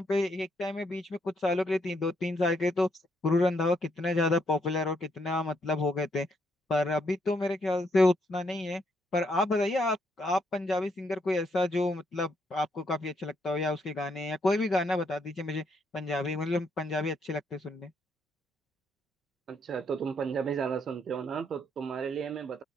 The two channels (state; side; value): normal; both; correlation 0.74